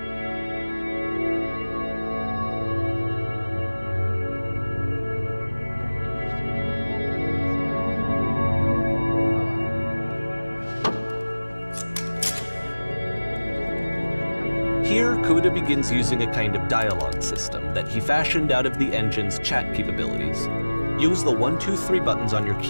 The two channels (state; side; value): inverted; both; correlation -1.00